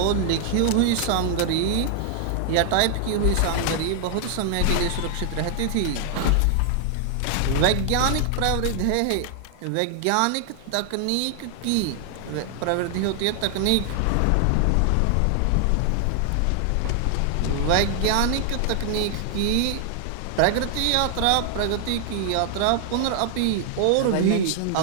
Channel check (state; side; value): different; both; correlation 0.00